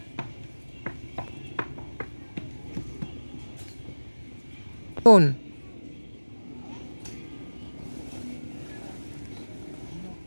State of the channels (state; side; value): inverted; both; correlation -1.00